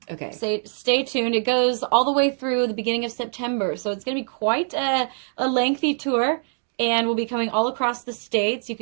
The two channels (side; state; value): left; silent; 60 dB below the other